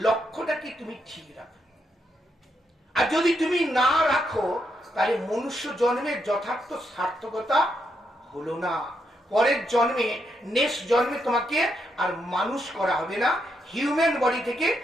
লক্ষ্যটাকে তুমি ঠিক রাখো। আর যদি তুমি না রাখো, তাহলে মনুষ্য জন্মের যথার্থ সার্থকতা হলো না। পরের জন্মে, নেক্সট জন্মে তোমাকে আর মানুষ করা হবে না, হিউম্যান বডি থেকে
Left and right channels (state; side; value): normal; both; correlation 0.80